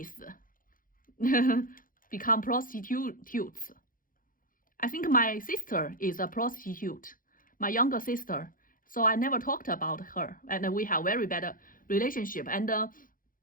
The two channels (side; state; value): right; late; 0.40 ms